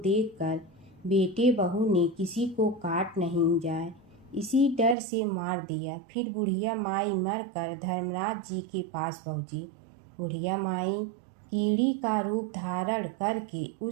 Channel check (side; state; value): left; drops out; at 5.0 s